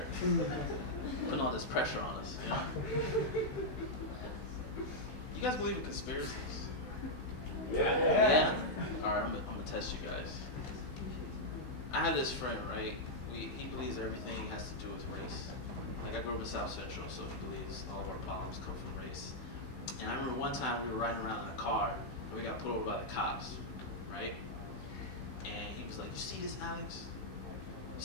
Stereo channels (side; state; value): right; late; 16 ms